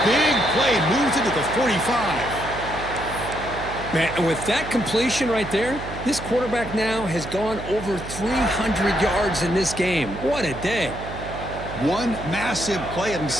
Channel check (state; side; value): noise; right; hum, 10 dB below the sound